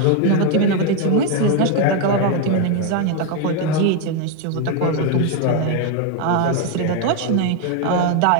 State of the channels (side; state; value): both; different; correlation 0.01